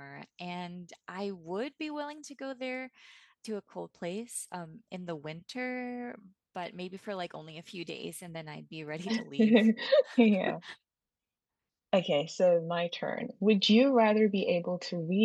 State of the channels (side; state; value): both; identical; correlation 1.00